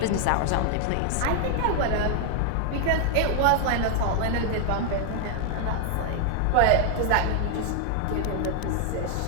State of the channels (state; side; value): different; both; correlation 0.00